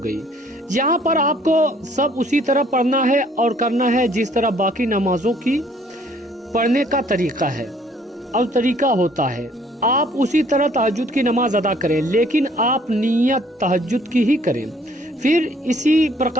यहाँ पर आपको सब उसी तरह पढ़ना है और करना है जिस तरह बाकी नमाजों की पढ़ने का तरीका है और तरीका होता है। आप उसी तरह तहज्जुद की नमाज अदा करें, लेकिन आप नियत तहज्जुद की ही करें। फिर इसी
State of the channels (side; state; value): both; normal; correlation 0.60